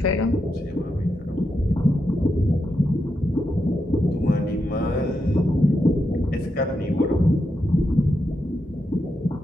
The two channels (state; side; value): normal; both; correlation 0.85